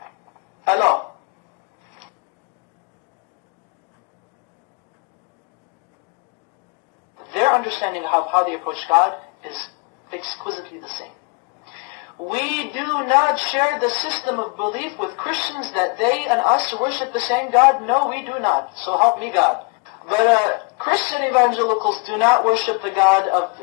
Allah. Their understanding of how they approach God is exquisitely the same. We do not share the system of belief with Christians that they and us worship the same God. No, we do not. So help me God. But Christian evangelicals do not worship the God of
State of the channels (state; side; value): quieter; right; 32.0 dB